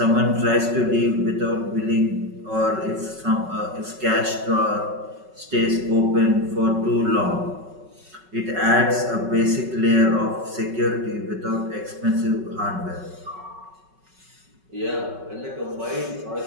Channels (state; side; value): late; left; 5.3 ms